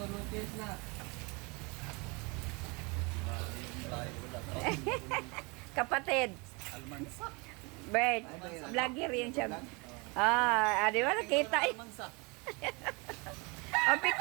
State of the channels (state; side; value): quieter; left; 29.0 dB